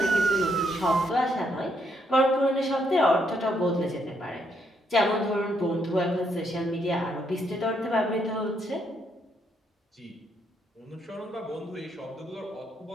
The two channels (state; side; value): normal; both; correlation 0.75